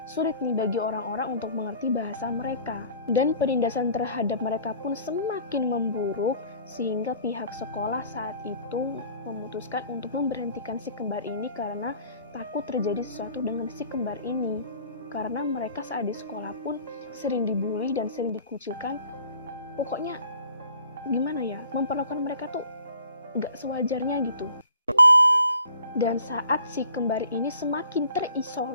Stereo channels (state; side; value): inverted; both; correlation -0.52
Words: sulit nih bagi orang-orang untuk mengerti bahasa mereka. Dan penindasan terhadap mereka pun semakin memburuk sehingga pihak sekolah saat itu memutuskan untuk memberhentikan si kembar ini karena takut terjadi sesuatu dengan si kembar ini. Karena mereka saat di sekolah pun sering dibully dan sering dikucilkan. Pokoknya gimana ya, memperlakukan mereka tuh nggak sewajarnya gitu. Dan saat si kembar ini semakin